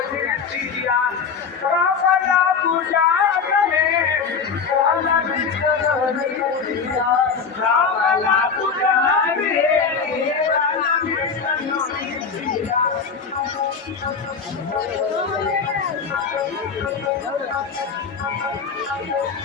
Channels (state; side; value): quieter; right; 5.7 dB